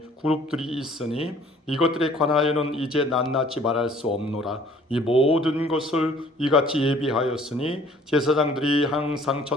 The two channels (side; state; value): both; normal; correlation 0.55